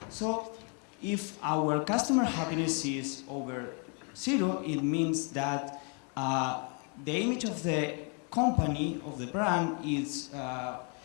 So if our customer happiness is over 0, it means that the image of the company, of the brand, it's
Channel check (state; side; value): quieter; right; 37.5 dB